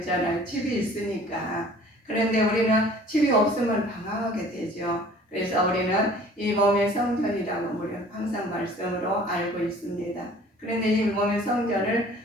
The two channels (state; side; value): normal; both; correlation 0.50